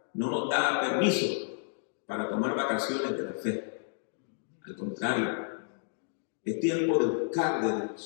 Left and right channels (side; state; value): right; silent; digital silence